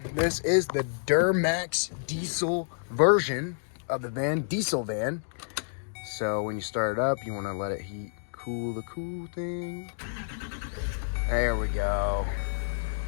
This is the DURAMAX diesel version of the van, diesel van. So when you start it up, you want to let it cool the cool thing. There we go.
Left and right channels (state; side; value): silent; right; digital silence